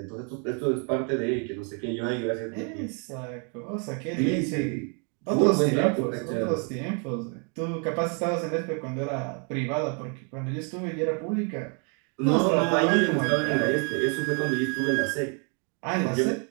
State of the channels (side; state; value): left; quieter; 37.0 dB